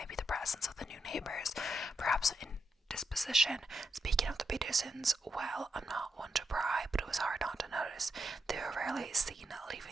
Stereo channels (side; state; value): both; normal; correlation 0.84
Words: the presence of the new neighbors, perhaps indisposition. Speaking of the Petersons, well, I'm not one to pry, but it was hard not to notice. They were rarely seen